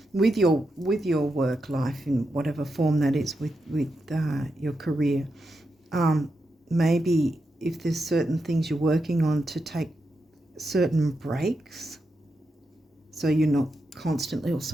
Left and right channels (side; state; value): both; normal; correlation 0.86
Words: with your work life in whatever form that is, with your career, maybe if there's certain things you're working on, to take certain breaks, so you're not constantly,